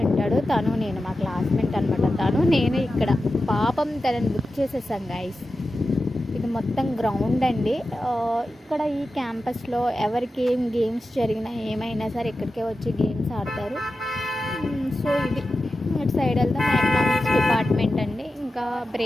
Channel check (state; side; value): normal; both; correlation 0.92